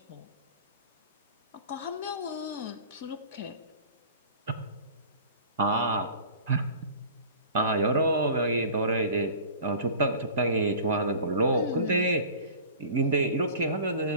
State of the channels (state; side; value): inverted; both; correlation -0.41